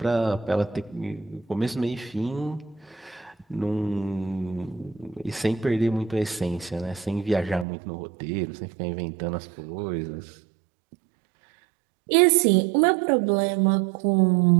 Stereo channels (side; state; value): left; drops out; at 7.7 s